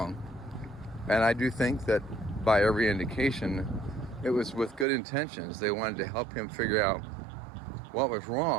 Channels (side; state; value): left; drops out; at 4.9 s